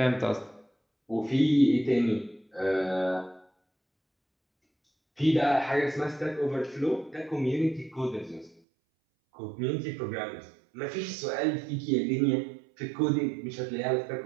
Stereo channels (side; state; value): left; drops out; at 8.6 s